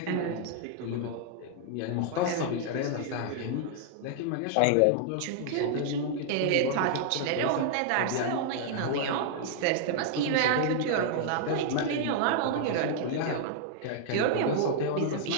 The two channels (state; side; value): different; both; correlation -0.01